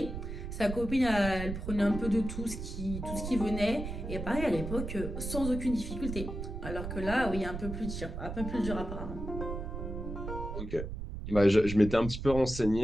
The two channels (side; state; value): right; noise; rumble, 6 dB below the sound